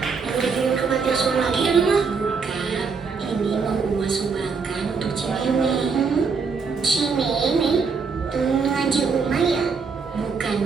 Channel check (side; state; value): left; quieter; 5.2 dB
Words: Udah dikirim ke panti asuhan lagi ya, Mama? Bukan. Ini mau Uma sumbangkan untuk Cimeme. Cimeme, temen ngaji Uma ya? Bukan,